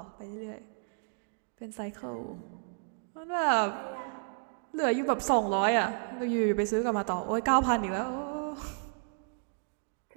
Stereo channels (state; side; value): silent; left; digital silence